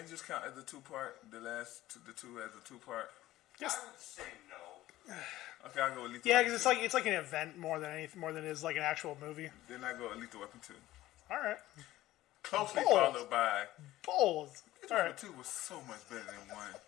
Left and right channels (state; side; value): quieter; right; 15.7 dB